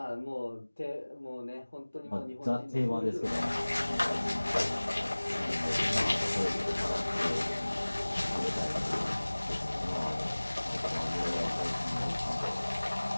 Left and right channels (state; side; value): inverted; both; correlation -1.00